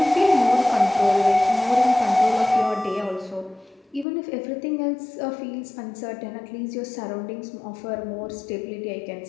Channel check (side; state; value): right; drops out; at 4.0 s